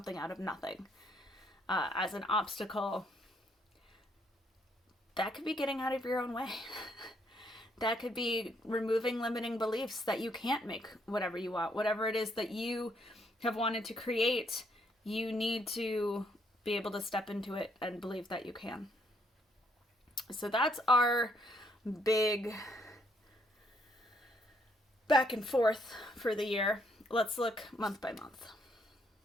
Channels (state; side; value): normal; both; correlation 0.70